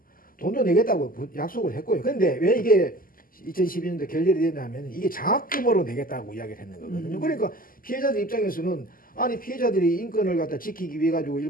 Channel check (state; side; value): late; right; 0.41 ms